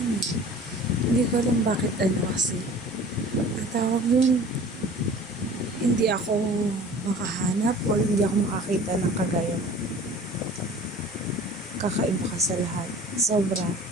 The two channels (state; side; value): normal; both; correlation 0.44